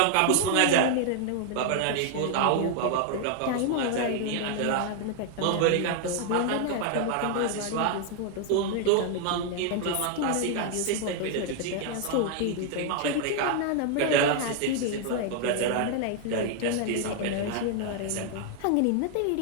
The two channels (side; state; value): both; different; correlation 0.00